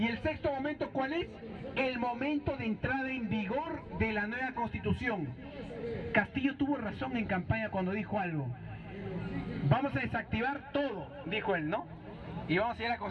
el sexto momento, ¿cuál es? El momento de entrada en vigor de la nueva constitución. Castillo tuvo razón en campaña cuando dijo algo. Vamos a desactivar todo, dijo él, ¿no? Y vamos a ir a la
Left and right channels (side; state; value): both; identical; correlation 1.00